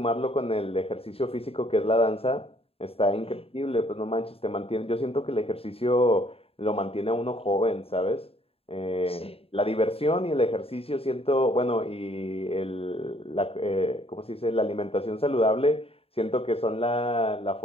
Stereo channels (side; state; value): right; late; 0.28 ms